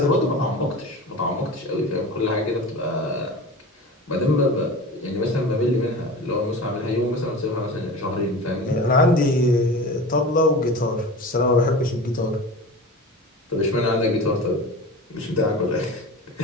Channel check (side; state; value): both; normal; correlation 0.33